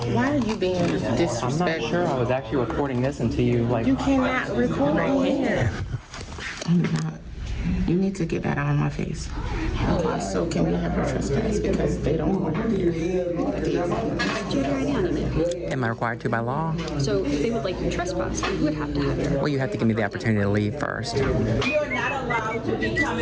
Why are you being disrespectful? I'm not sure. I was actually recording this until you like. You cannot record here. I'm not. You need to get that out of my face. So can we have a trespass because they don't want to do it. Am I required to by law? So if they would like you trespass, you would have to have it. Well, you have to give me the opportunity to leave first. You are not allowed to be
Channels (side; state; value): both; identical; correlation 1.00